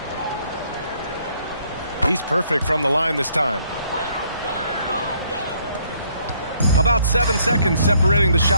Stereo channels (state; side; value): inverted; both; correlation -0.67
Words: He's perfect from the line this time. About 7 seconds separating the